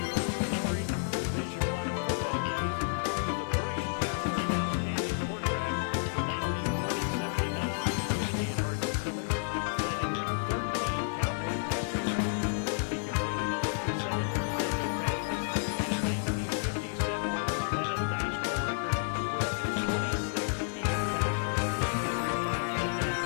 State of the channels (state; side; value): silent; right; digital silence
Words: glory Division I football days. He was a brilliant passer and outstanding quarterback from 1947 to 1950 at Hardin-Simmons, setting 13 Cowboy passing records. He completed 57% of his passes, and in 1950 set what was then a national record with 26 TD passes. He threw 5 touchdown